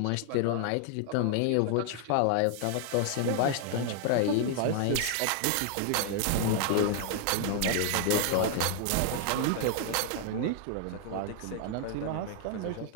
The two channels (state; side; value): different; both; correlation 0.00